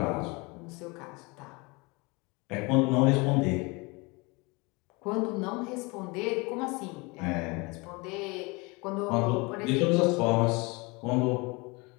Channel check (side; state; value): right; quieter; 26.7 dB